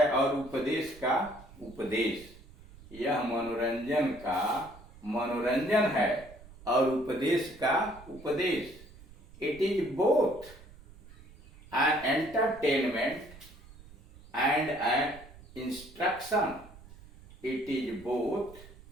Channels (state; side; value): noise; right; rumble, 21 dB below the sound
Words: और उपदेश का उपदेश, यह मनोरंजन का मनोरंजन है और उपदेश का उपदेश, it is both an entertainment and an instruction, it is both